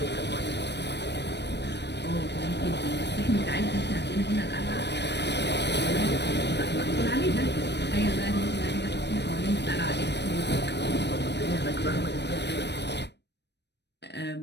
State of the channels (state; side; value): late; right; 0.50 ms